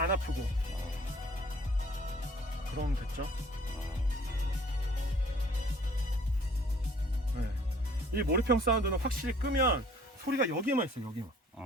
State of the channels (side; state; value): both; normal; correlation 0.55